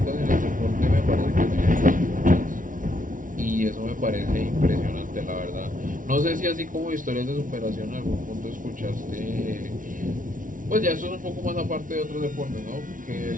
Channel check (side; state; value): left; late; 0.38 ms